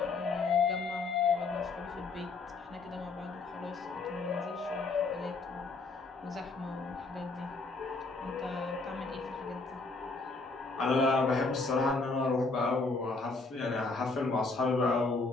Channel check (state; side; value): quieter; right; 3.8 dB